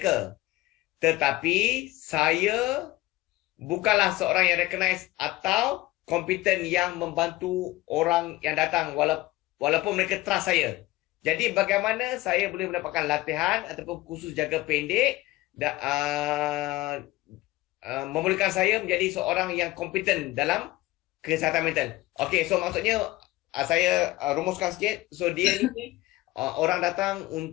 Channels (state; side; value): quieter; right; 18.5 dB